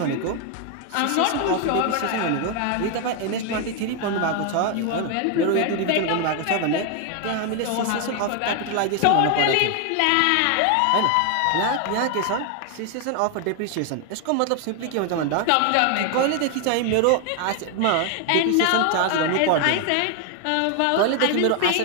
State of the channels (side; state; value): both; different; correlation 0.01